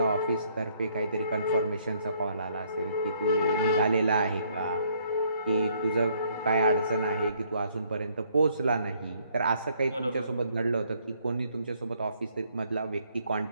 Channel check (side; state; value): both; inverted; correlation -0.67